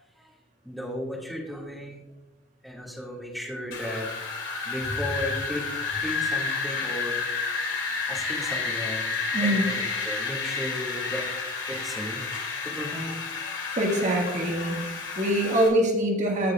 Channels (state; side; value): normal; both; correlation 0.38